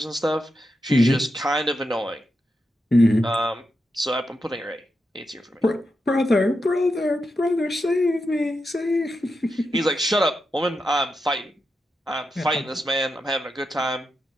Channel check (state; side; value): normal; both; correlation 0.87